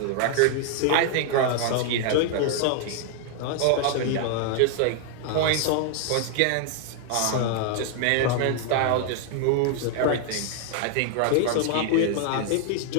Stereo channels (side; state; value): both; different; correlation 0.00